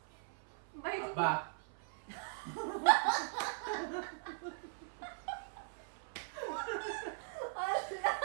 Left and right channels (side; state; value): left; silent; 51 dB below the other